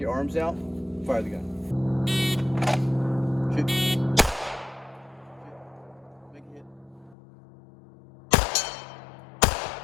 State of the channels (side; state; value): right; drops out; at 7.2 s